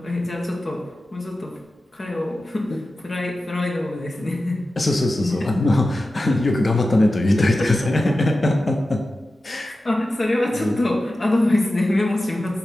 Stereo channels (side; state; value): both; normal; correlation 0.94